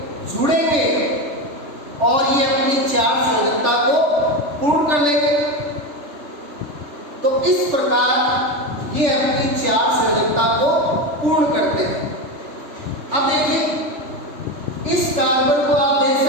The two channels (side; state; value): left; late; 3.4 ms